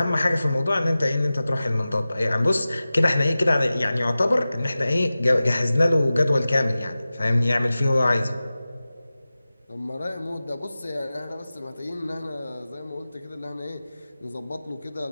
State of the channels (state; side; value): inverted; both; correlation -0.96